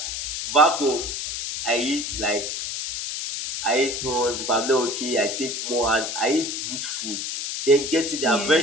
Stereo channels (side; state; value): left; noise; hiss, 4 dB below the sound